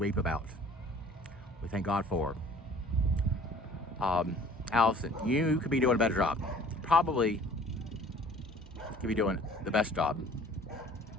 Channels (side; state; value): both; normal; correlation 0.51